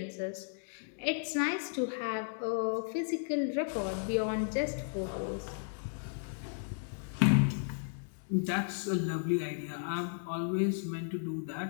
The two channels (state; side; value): silent; right; digital silence